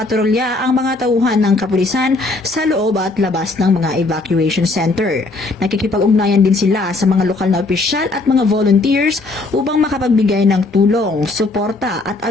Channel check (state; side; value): quieter; right; 3.2 dB